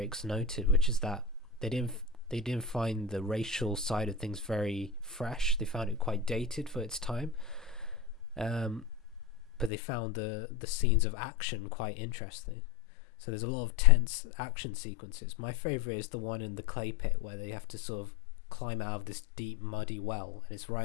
noted, which is that they didn't find the racial side of things very fresh. They found it quite dated for its time. But they found the scenes of action quite interesting. So there's a lot of tense action sequences. My favourite is the one in the clay pit where they have to sort of climb out of this deep muddy well, and it's right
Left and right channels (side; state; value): right; drops out; at 9.7 s